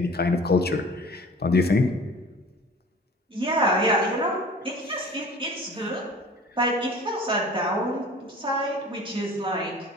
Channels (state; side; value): normal; both; correlation 0.44